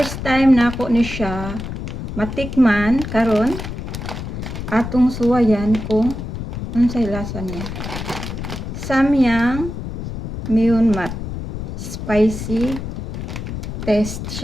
time na ako ni siya matikman karon atong suwayan kung unsay lasa niya. Samyang myeonmat. Spicy taste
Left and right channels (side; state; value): left; noise; rumble, 7 dB below the sound